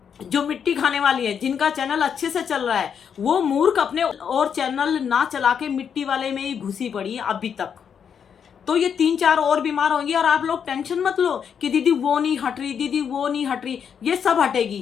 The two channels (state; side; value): quieter; right; 7.5 dB